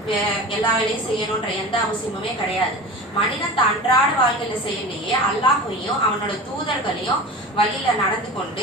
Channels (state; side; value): normal; both; correlation 0.33